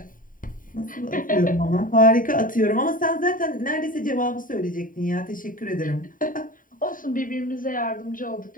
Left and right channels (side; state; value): right; late; 0.39 ms